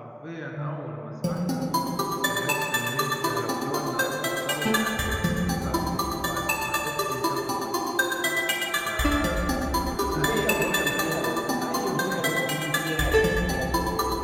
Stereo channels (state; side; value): identical; both; correlation 1.00